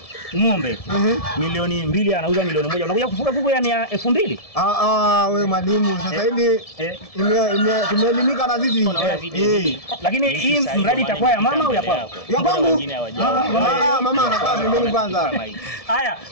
ng'ombe milioni 2 anauza milioni 1. Unakuja kufuga kuku yani ya 2000? Wewe mwalimu sasa hivi tumeelimika na sisi. Lakini hii mradi itakuwa ya mama au ya kwako? Ya kwangu. Mama anakaa pembeni kwanza. Haya,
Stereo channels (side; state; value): right; late; 1.7 ms